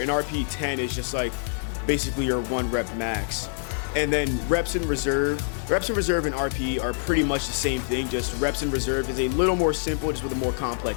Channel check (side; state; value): right; silent; 61 dB below the other